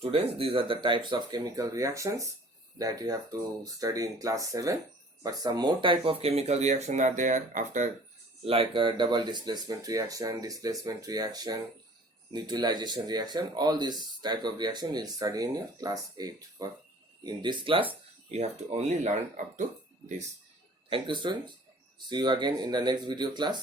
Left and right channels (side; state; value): both; normal; correlation 0.50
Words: these are the types of chemical reactions that you have to study in class 7. But some more type of chemical reaction are there after, like a double displacement reaction, neutralization reaction. All these type of reaction you will study in your class 8. But in this class you have to only learn up to this. Thank you, students. See you again in the next video